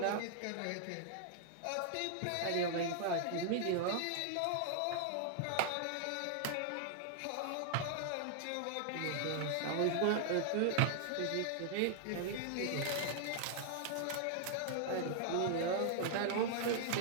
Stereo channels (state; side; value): different; both; correlation 0.00